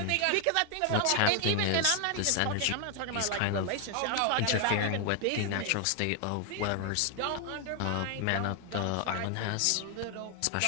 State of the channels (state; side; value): different; both; correlation 0.00